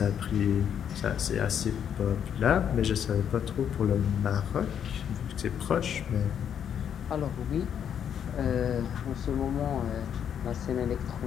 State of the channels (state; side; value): quieter; right; 8.7 dB